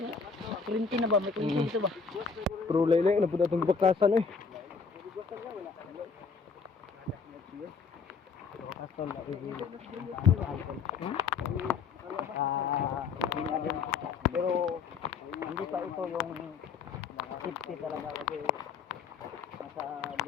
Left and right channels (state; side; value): quieter; right; 5.4 dB